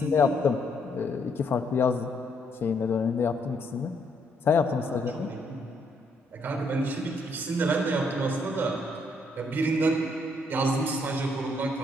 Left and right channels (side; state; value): both; normal; correlation 0.71